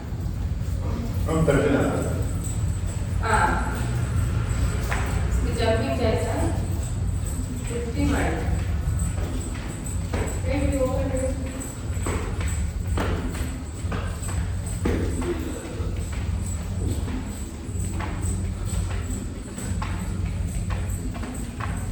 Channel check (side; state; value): both; identical; correlation 1.00